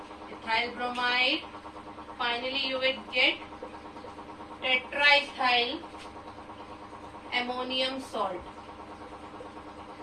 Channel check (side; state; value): both; identical; correlation 1.00